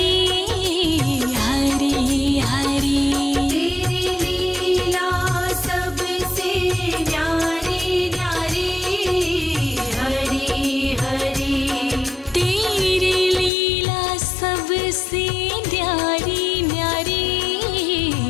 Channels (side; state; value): right; drops out; at 13.5 s